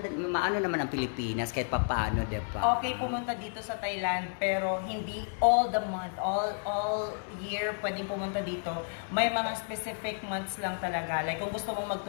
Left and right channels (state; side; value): silent; right; digital silence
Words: maano naman ang Pilipinas kahit papaano, diba? Okay, pumunta dito sa Thailand, pero hindi all the month, all year pwedeng pumunta dito. May mga specific months lang talaga. Like, kung gusto mong